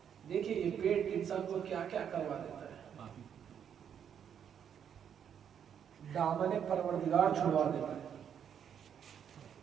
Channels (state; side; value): quieter; left; 8.4 dB